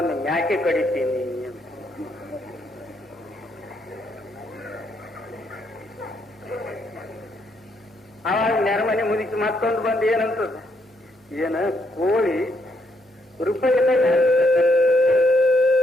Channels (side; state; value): both; normal; correlation 0.74